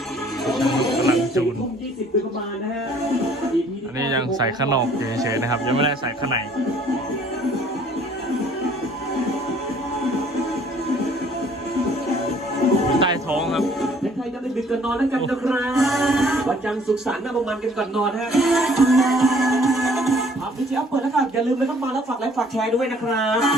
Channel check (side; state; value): both; normal; correlation 0.58